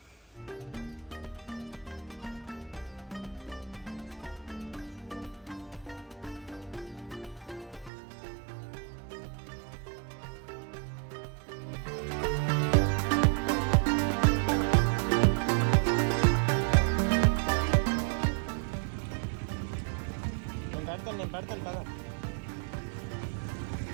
నేను పెడతాను కదా.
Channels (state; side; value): drops out; left; at 7.9 s